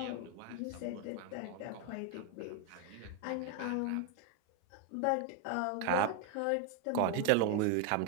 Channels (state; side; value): different; both; correlation 0.01